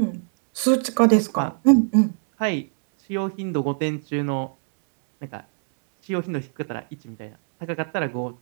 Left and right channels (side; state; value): left; silent; digital silence